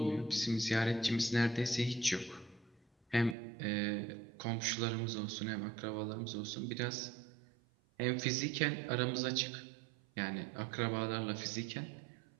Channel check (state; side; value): drops out; left; at 3.4 s